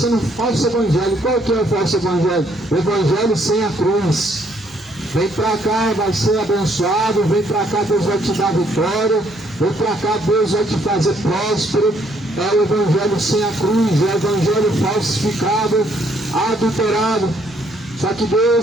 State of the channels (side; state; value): both; normal; correlation 0.68